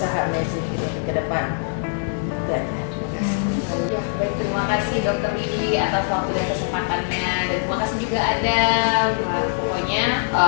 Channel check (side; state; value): right; silent; digital silence